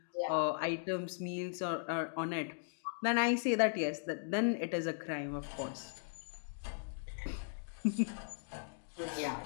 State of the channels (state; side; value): silent; right; digital silence